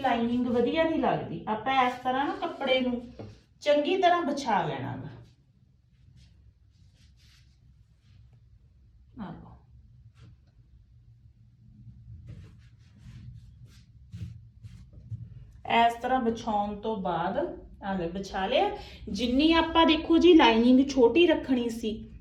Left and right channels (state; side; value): identical; both; correlation 1.00